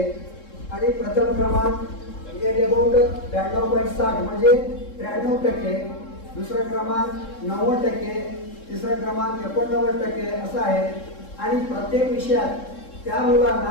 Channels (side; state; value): right; late; 3.7 ms